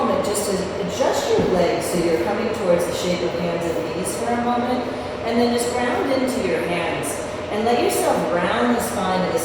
just to adjust your legs so you're coming towards the shape of hands and knees for a moment. And then just ground into your hands. And let yourself round the spine of the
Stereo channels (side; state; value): both; identical; correlation 1.00